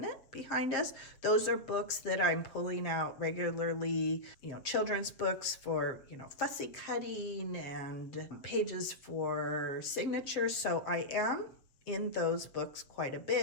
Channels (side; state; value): right; late; 7.5 ms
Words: behind us. Those are books that I'm pulling out regularly, you know, children's books for, you know, fussy cutting and pages for signatures. So I am in those books quite a